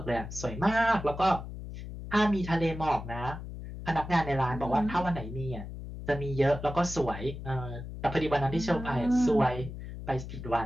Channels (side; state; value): left; noise; hum, 10 dB below the sound